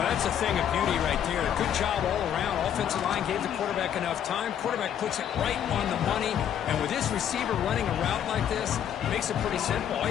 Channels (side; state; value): right; quieter; 9.5 dB